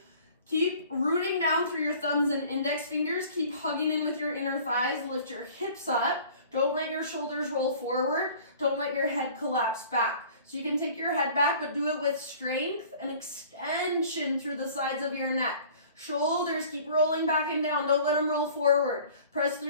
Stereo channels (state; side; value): inverted; both; correlation -0.48